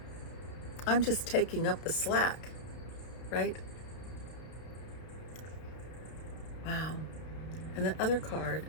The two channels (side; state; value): right; late; 32 ms